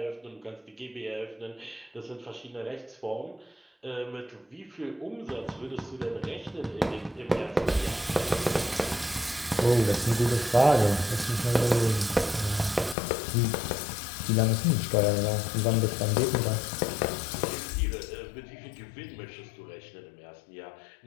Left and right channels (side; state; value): right; drops out; at 13.0 s